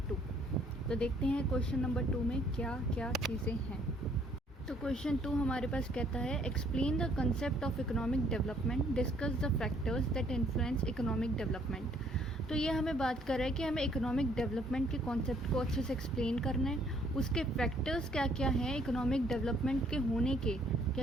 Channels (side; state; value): both; normal; correlation 0.64